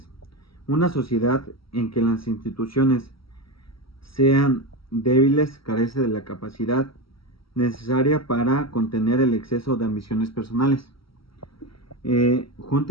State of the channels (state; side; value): late; right; 0.75 ms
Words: Una sociedad en que las instituciones sean débiles carece de la capacidad necesaria para contener el exceso de ambiciones personales.